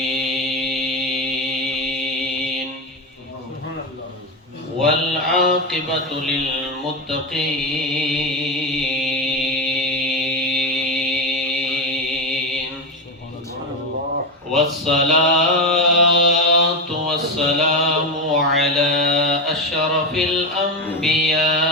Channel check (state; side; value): normal; both; correlation 0.14